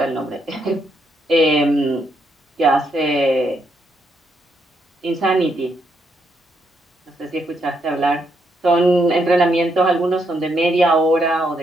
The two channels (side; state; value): both; normal; correlation 0.77